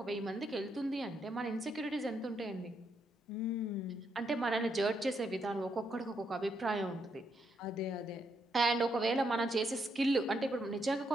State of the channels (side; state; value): both; normal; correlation 0.78